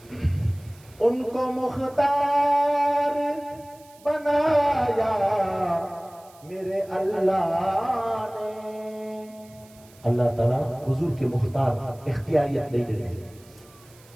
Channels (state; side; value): noise; right; hiss, 26 dB below the sound